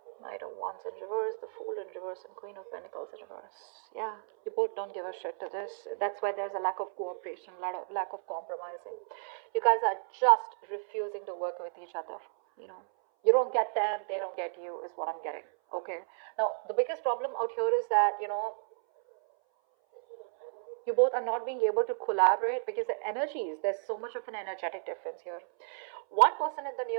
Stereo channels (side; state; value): left; silent; 56 dB below the other